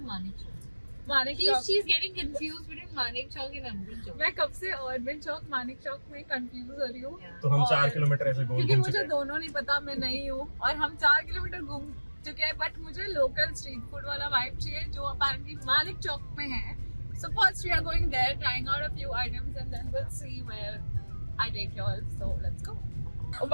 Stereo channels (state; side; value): inverted; both; correlation -1.00